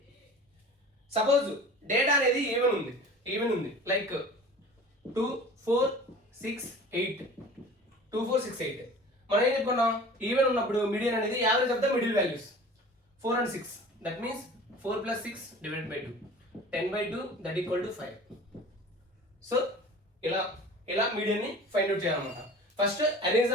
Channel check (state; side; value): normal; both; correlation 0.42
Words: సపోజ్ డేటా అనేది ఈవెన్ ఉంది లైక్ 2, 4, 6, 8. మనం ఏం చెప్పుకున్నాం? ఈవెన్ ఉన్నప్పుడు మీడియన్ అనేది average of the middle values 4 and 6. That means 4 + 6 divided by 2, 10/2 that equal to 5. So ఇలా మీడియన్ ని ఫైండ్ అవుట్ చేయాలన్నమాట. First arrange